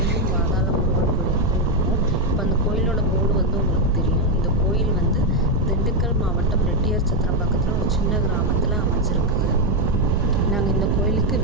பாதாள முருகன் கோயிலுக்கு இருக்கோம். இப்போ அந்த கோயிலோட போர்டு வந்து உங்களுக்கு தெரியும். இந்த கோயில் வந்து திண்டுக்கல் மாவட்டம் ரெட்டியார் சத்திரம் பக்கத்தில் ஒரு சின்ன கிராமத்தில் அமைச்சிருக்குது. நாங்கள் இந்த கோயிலுக்கு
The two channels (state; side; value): normal; both; correlation 0.04